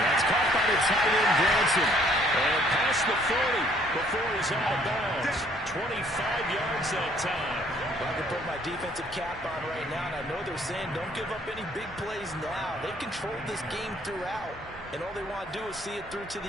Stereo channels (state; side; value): normal; both; correlation 0.62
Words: that's caught by the tight end, Granson. And past the 40 before he's out of bounds. 25 yards that time. I can put my defensive cap on right now, and I know they're saying don't give up any big plays now. They've controlled this game throughout, and all they want to do is see it through to